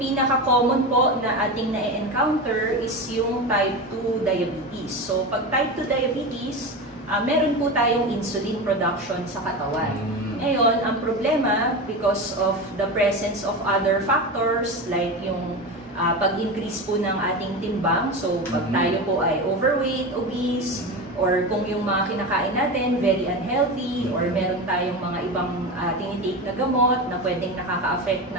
pinaka-common po na ating na-encounter is yung type 2 diabetes. So, pag type 2 diabetes, meron po tayong insulin production sa katawan. Ngayon, ang problema, because of the presence of other factors, like yung pag-increase po ng ating timbang, so pag tayo po ay overweight, obese, or kung yung mga kinakain natin very unhealthy, or meron tayong mga ibang tinitake na gamot na pwedeng nakaka-affect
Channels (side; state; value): both; normal; correlation 0.23